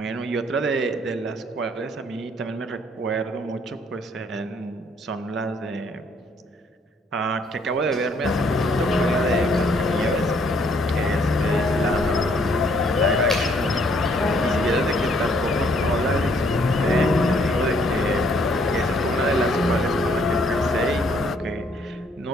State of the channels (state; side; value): normal; both; correlation 0.66